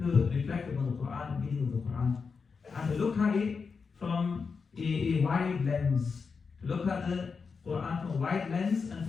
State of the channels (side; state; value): right; quieter; 5.2 dB